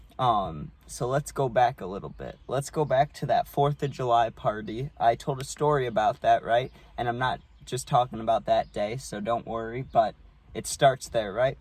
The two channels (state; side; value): identical; both; correlation 1.00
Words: So let's go back a little bit. Let's go back to that 4th of July party. I told a story about that, right? And I'm not just talking about that day, so don't worry, but it starts there, right?